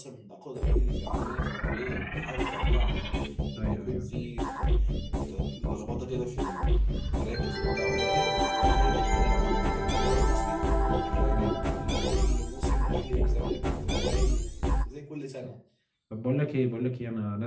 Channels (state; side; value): identical; both; correlation 1.00